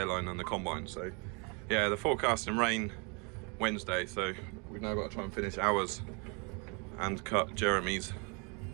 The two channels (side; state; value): left; quieter; 33.1 dB